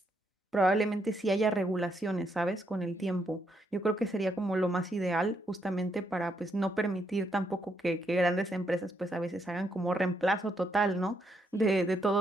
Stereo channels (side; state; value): both; normal; correlation 0.76